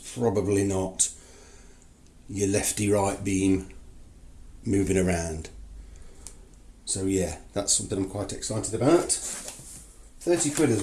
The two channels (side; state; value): both; identical; correlation 1.00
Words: not your lefty right beam moving around. So yeah, that's something I'm quite excited about. 30 quid as